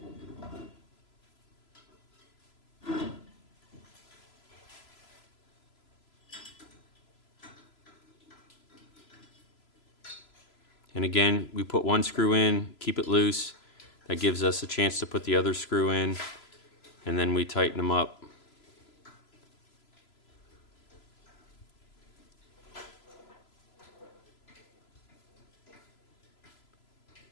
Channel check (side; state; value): right; late; 3.0 ms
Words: And again, we put 1 screw in, keep it loose. That gives us a chance to put the other screw in, and then we tighten them up.